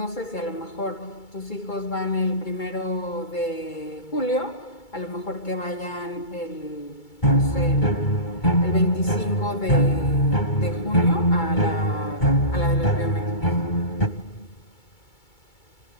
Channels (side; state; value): right; late; 2.3 ms